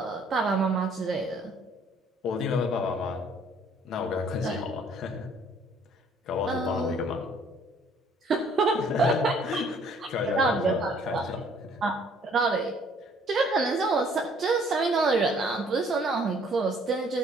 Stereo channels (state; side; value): normal; both; correlation 0.60